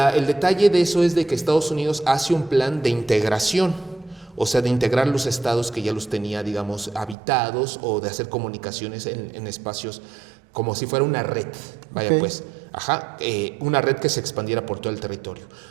el detalle de eso es de que Estados Unidos hace un plan de integración. O sea, de integrar los estados que ya los tenía, digamos, habitados o de hacer comunicaciones en espacios como si fuera una red, pues, una red que se expandiera por todo el territorio.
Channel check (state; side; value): drops out; left; at 7.2 s